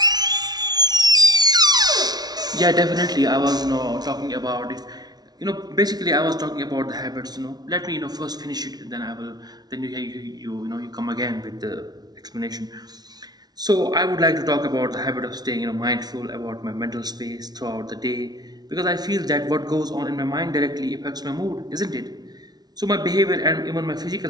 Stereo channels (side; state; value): left; late; 0.19 ms